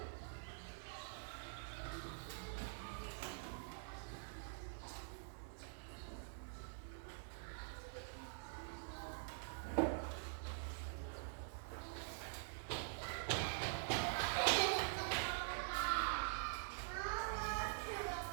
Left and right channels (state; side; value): silent; left; digital silence